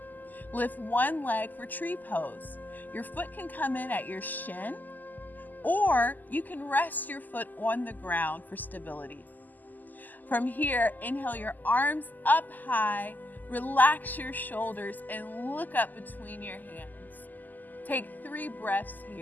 Lift one leg for tree pose. Your foot can come in at your shin, or you can rest your foot on the ground for stability. From here, inhale your arms up high, relax your shoulders, and look up between your hands. Take 3 breaths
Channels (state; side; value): late; right; 0.084 ms